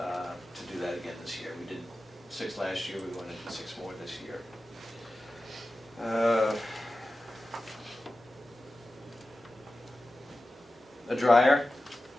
to do that again this year. We did 6 last year. We want to do 6 more this year. A dryer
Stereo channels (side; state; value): both; normal; correlation 0.94